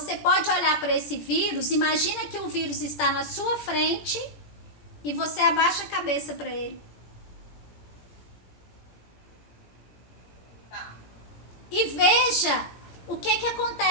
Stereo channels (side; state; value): right; late; 17 ms